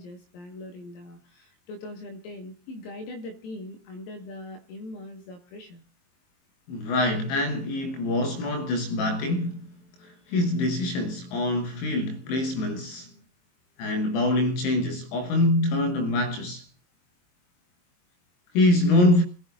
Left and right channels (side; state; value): right; late; 23 ms